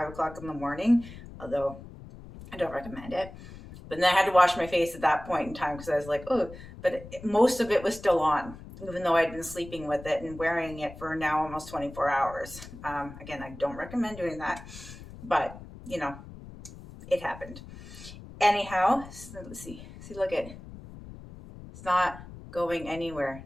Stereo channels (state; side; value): noise; left; rumble, 15 dB below the sound